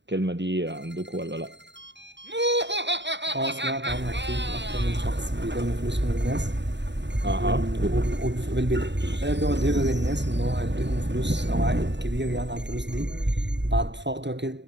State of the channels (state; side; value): late; left; 0.52 ms